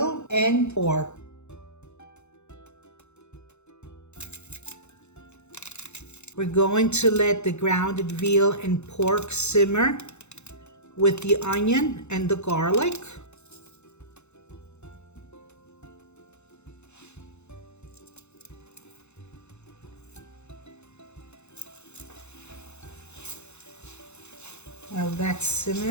and pork. We're going to let the grounded veal and pork simmer with the onion and the garlic. While that's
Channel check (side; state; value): right; late; 0.82 ms